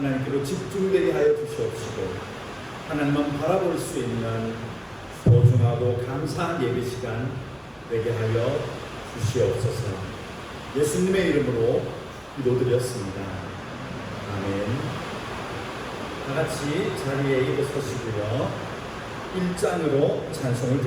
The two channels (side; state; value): both; identical; correlation 1.00